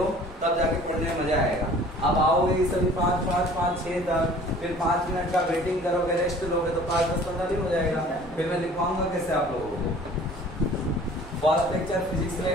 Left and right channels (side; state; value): both; normal; correlation 0.49